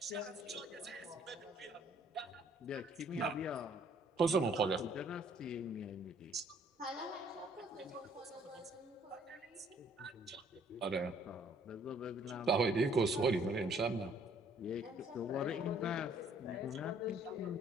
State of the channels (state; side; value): normal; both; correlation 0.61